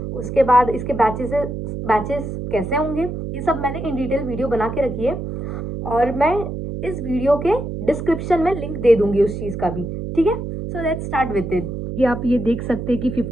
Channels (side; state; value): right; noise; hum, 6 dB below the sound